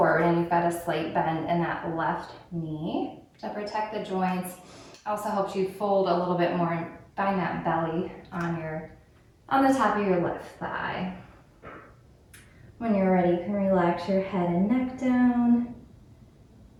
and you've got a slight bend in that left knee to protect the joints. Also helps you fold a little bit more and find that belly on the top of your left thigh. When you're ready, you can relax your head and neck down.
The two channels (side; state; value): both; identical; correlation 1.00